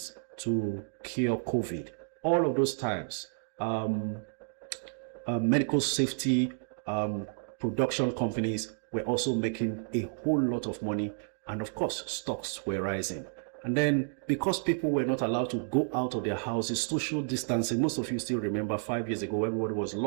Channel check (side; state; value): left; silent; digital silence